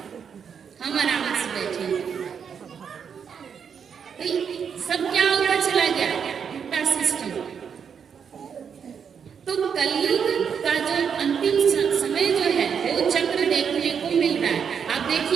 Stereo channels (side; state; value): left; quieter; 7.1 dB